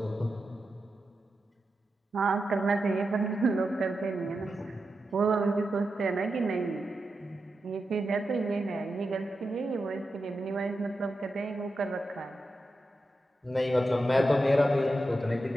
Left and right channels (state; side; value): normal; both; correlation 0.89